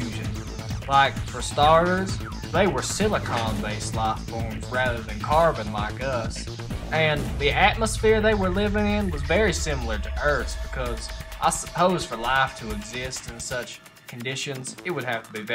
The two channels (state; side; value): identical; both; correlation 1.00